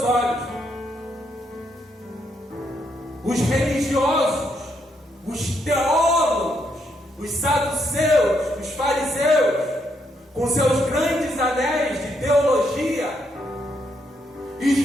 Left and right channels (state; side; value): normal; both; correlation 0.76